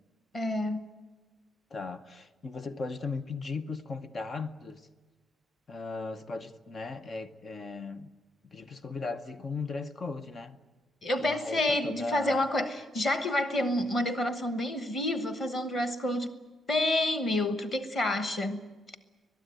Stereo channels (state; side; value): normal; both; correlation 0.77